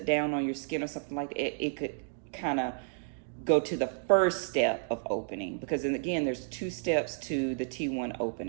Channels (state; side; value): silent; left; digital silence